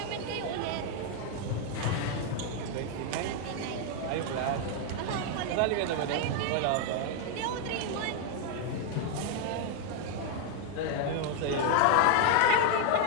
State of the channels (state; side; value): different; both; correlation 0.00